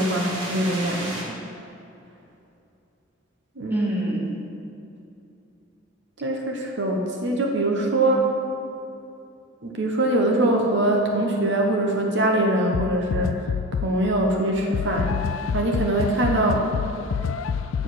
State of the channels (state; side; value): normal; both; correlation 0.29